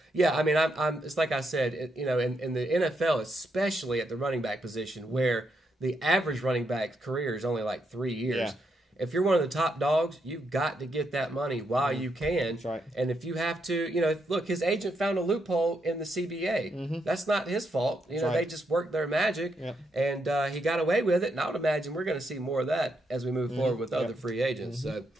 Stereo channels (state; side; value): normal; both; correlation 0.79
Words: yeah, I mean, I'm it's like I said, in the NFL, especially at the running back position, where the average running back's career is only like 3 years. Yeah. If you're one of the top dogs, you've got to get that money while you can. That's right. And if you have to, look, his agent found a loophole in the CBA. That's not his fault. They just worked their magic, and he got away with it. And I would imagine we're going to see more of that as we move forward with other free agents. So,